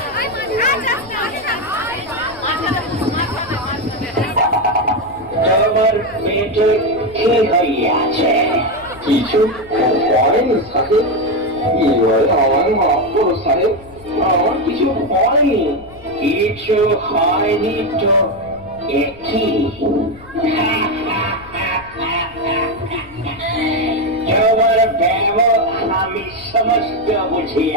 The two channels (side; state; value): left; noise; rumble, 21 dB below the sound